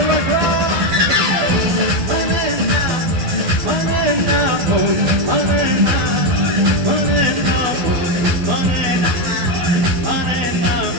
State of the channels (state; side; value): late; left; 12 ms